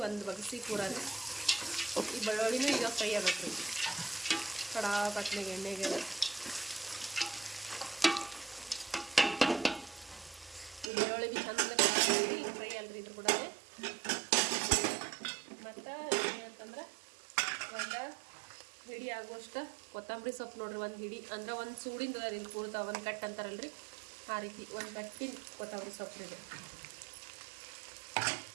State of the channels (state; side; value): drops out; left; at 10.9 s